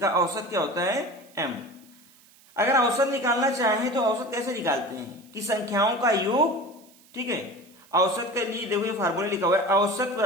औसत क्या होता है, m। अगर औसत निकालना चाहें तो औसत कैसे निकालते हैं कि संख्याओं का योग, ठीक है। औसत के लिए देखो ये फार्मूला लिखा हुआ है, औसत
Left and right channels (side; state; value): right; noise; hiss, 27 dB below the sound